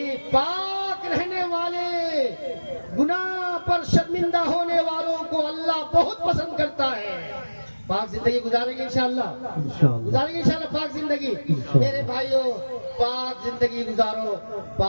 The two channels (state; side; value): inverted; both; correlation -1.00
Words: پاک رہنے والے، گناہ پر شرمندہ ہونے والوں کو اللہ بہت پسند کرتا ہے. پاک زندگی گزاریں گے انشاءاللہ. گزاریں گے انشاءاللہ پاک زندگی. میرے بھائیوں، پاک زندگی گزارو.